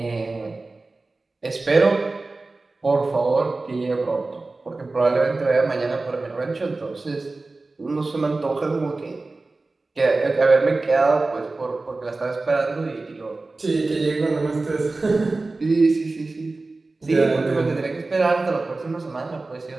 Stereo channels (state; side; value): quieter; left; 3.4 dB